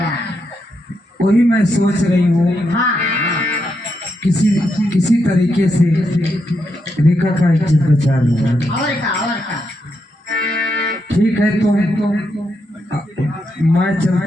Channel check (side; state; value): both; normal; correlation 0.82